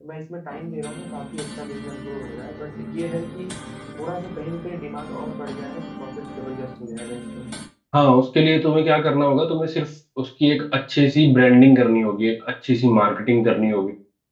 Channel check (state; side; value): identical; both; correlation 1.00